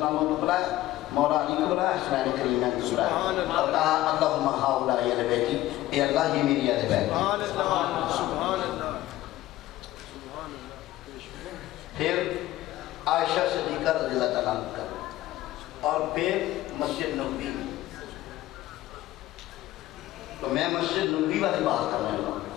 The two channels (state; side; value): quieter; right; 15.7 dB